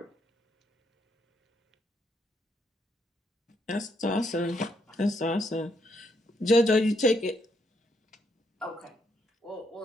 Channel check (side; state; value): both; normal; correlation 0.75